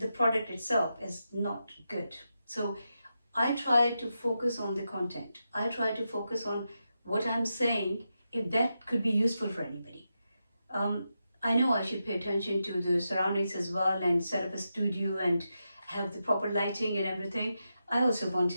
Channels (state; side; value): inverted; both; correlation -0.87